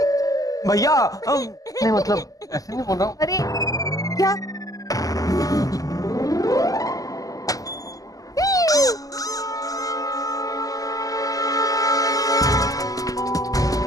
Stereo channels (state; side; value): late; right; 0.17 ms